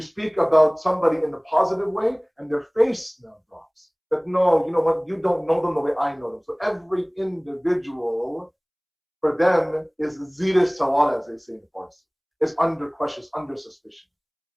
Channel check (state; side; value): identical; both; correlation 1.00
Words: about somebody in the positive way, and their face now drops. That no, you know what, you don't know them the way I know them. So every individual for them is zira sawal, as they say in Farsi. It's under question, under suspicion.